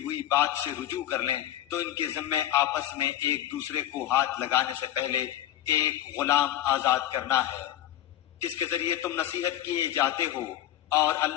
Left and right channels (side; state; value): right; quieter; 12.7 dB